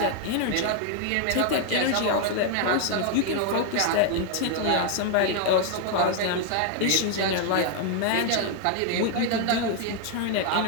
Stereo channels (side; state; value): both; different; correlation 0.00